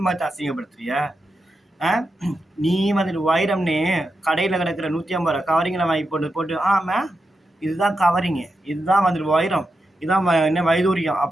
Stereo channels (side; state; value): both; normal; correlation 0.87